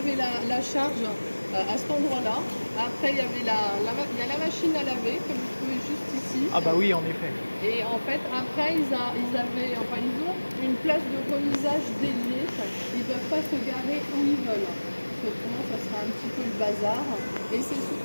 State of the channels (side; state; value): both; inverted; correlation -1.00